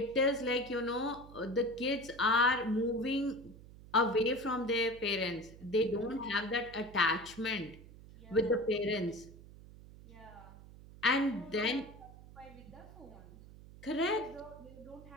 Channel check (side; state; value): right; noise; hum, 18 dB below the sound